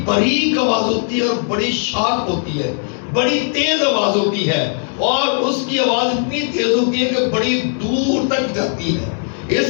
باریک آواز ہوتی ہے اور بڑی شارپ ہوتی ہے، بڑی تیز آواز ہوتی ہے اور اس کی آواز اتنی تیز ہوتی ہے کہ بڑی دور تک جاتی ہے.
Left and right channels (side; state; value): right; silent; 59 dB below the other